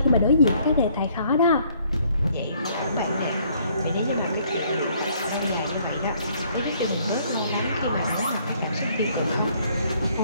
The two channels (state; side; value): inverted; both; correlation -0.64